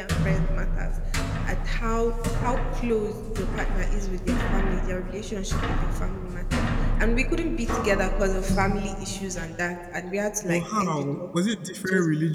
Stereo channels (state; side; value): identical; both; correlation 1.00